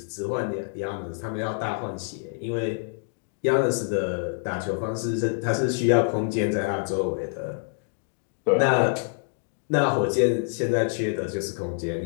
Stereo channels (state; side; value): silent; right; digital silence